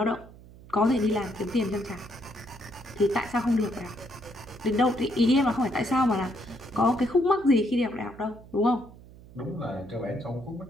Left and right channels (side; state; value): right; noise; hum, 20 dB below the sound